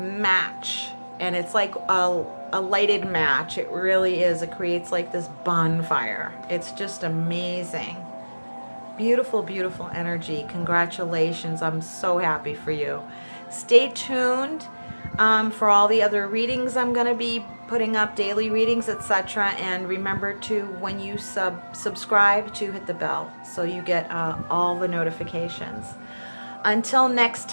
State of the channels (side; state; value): both; inverted; correlation -1.00